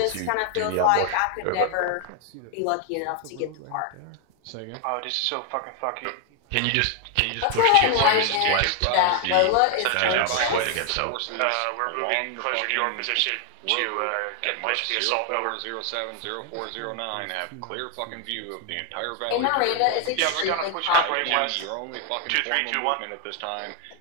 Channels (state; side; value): different; both; correlation 0.01